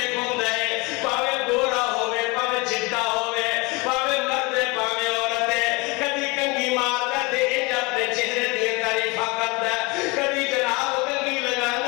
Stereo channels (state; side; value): quieter; right; 25.4 dB